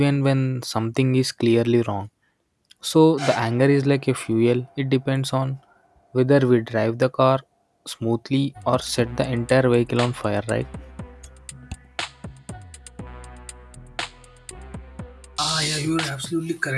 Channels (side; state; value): both; identical; correlation 1.00